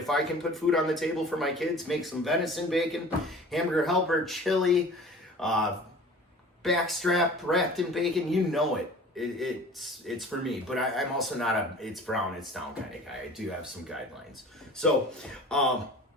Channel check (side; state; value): both; normal; correlation 0.43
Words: I can put food on the table for my kids, make some venison bacon, hamburger helper, chili, backstrap wrapped in bacon, you know it. It's for me, but I'm also not a it's brown, it's down kind of guy. I do have some guidelines. So,